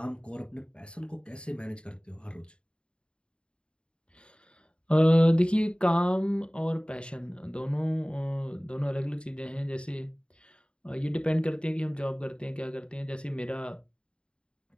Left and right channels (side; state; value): right; late; 0.054 ms